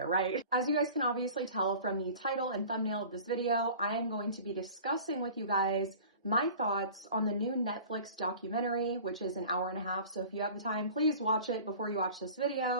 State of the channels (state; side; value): inverted; both; correlation -0.42